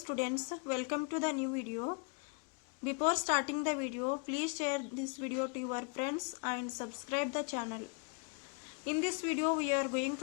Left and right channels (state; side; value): quieter; right; 37.3 dB